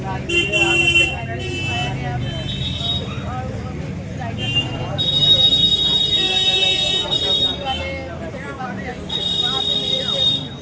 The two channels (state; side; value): identical; both; correlation 1.00